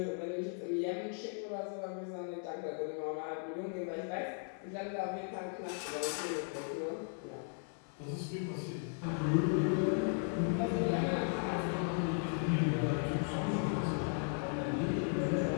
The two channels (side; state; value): right; silent; 53 dB below the other